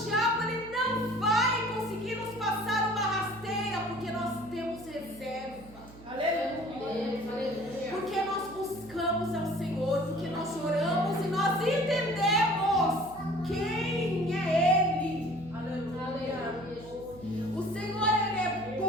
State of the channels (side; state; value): right; noise; hum, 19 dB below the sound